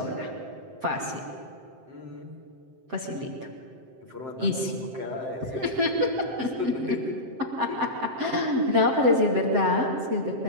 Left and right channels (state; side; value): late; left; 7.6 ms